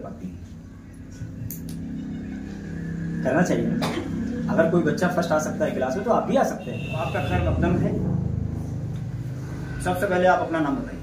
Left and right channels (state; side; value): identical; both; correlation 1.00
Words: हैं? करना चाहिए ना। अगर कोई बच्चा फर्स्ट आ सकता है क्लास में, तो आप भी आ सकते हैं। तो आपका खैर मकदम है। सबसे पहले आप अपना नाम बताइए।